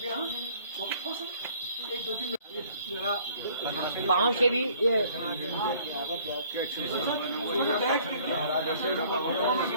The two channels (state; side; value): inverted; both; correlation -0.57